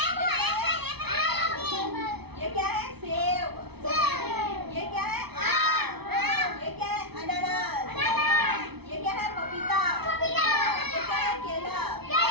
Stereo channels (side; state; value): left; late; 0.98 ms